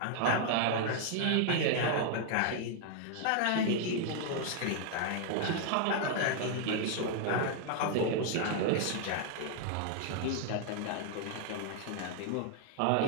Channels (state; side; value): different; both; correlation 0.00